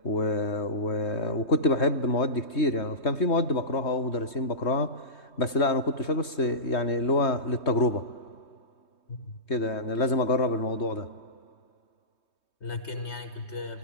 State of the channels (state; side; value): late; right; 3.2 ms